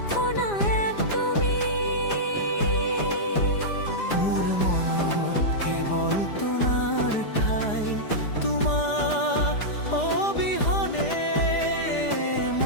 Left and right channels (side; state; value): right; late; 4.9 ms